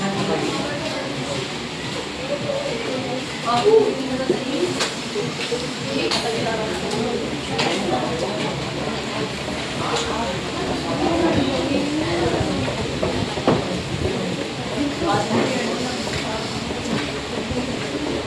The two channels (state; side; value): identical; both; correlation 1.00